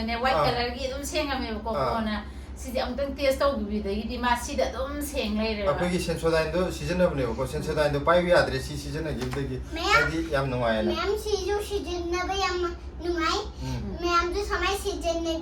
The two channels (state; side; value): identical; both; correlation 1.00